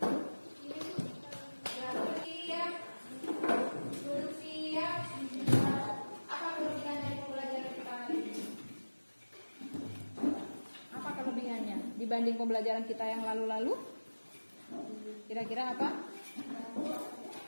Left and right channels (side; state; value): both; inverted; correlation -1.00